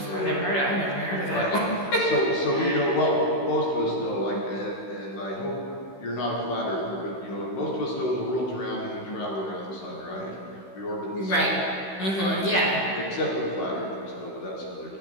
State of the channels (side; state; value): right; late; 16 ms